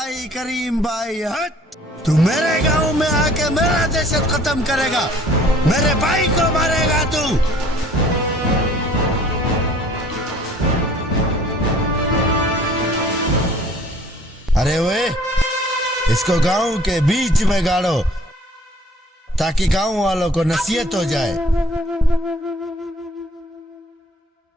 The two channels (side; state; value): both; normal; correlation 0.54